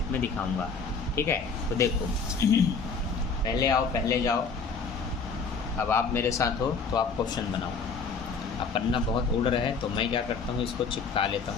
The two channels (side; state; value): right; quieter; 5.0 dB